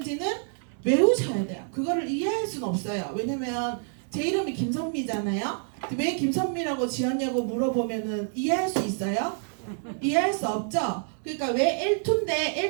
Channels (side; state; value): left; silent; 59 dB below the other